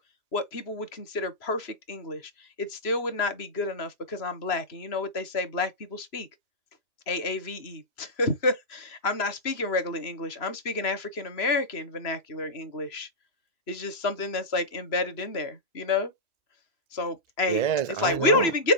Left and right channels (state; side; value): late; right; 3.0 ms